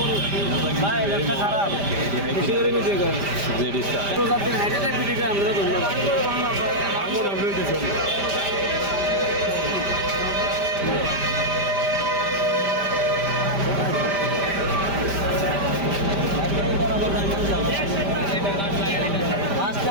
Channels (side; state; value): left; late; 5.0 ms